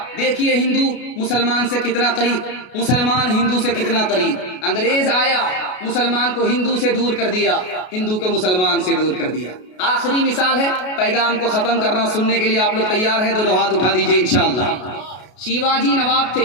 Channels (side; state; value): right; late; 33 ms